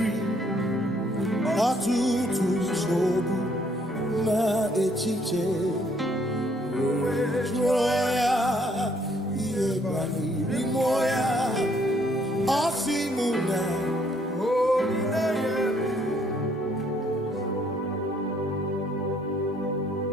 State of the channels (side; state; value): both; normal; correlation 0.66